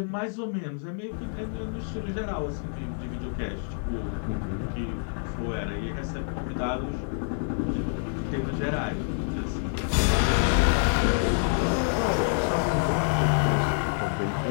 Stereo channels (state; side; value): silent; right; 60 dB below the other